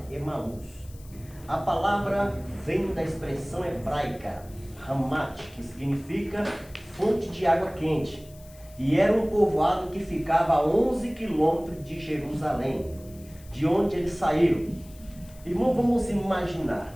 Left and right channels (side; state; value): left; noise; hiss, 24 dB below the sound